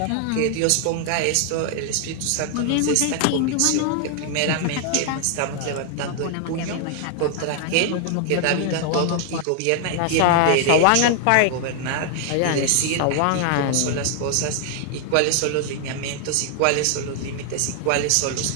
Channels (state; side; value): different; both; correlation 0.00